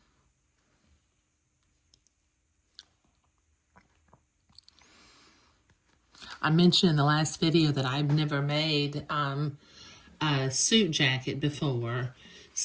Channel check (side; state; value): both; identical; correlation 1.00